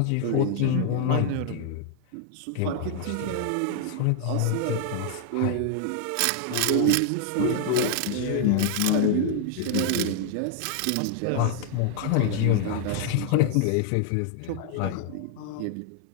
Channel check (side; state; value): both; different; correlation 0.00